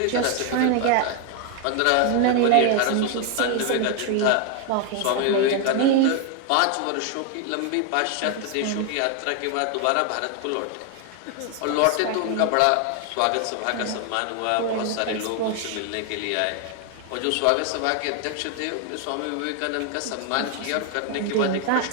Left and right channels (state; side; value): different; both; correlation 0.01